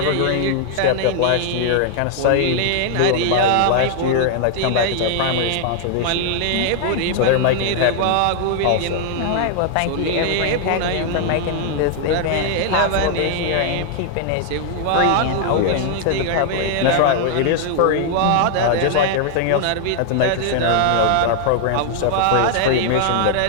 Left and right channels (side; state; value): both; different; correlation 0.00